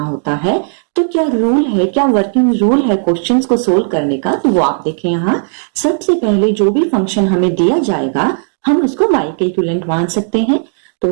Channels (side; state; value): left; silent; digital silence